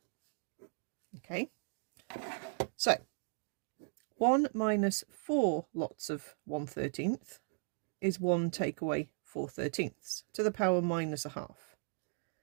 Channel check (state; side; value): silent; left; digital silence